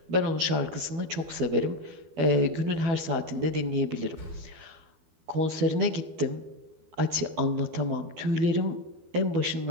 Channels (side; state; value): left; late; 12 ms